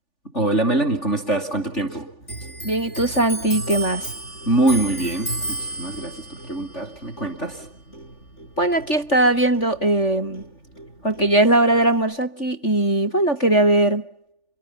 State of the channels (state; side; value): late; right; 3.4 ms